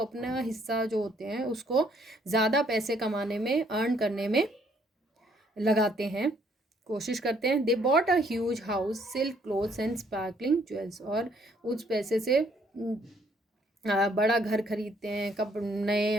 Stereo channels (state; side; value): normal; both; correlation 0.66